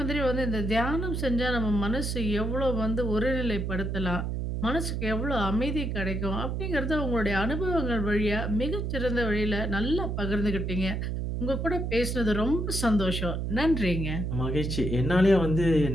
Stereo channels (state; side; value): noise; right; hum, 2 dB below the sound